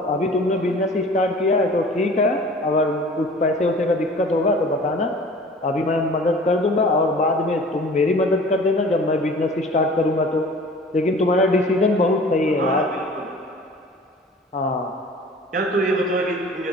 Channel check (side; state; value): both; normal; correlation 0.45